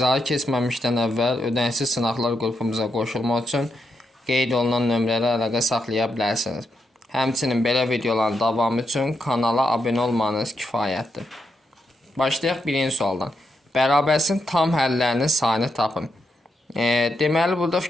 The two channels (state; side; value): normal; both; correlation 0.83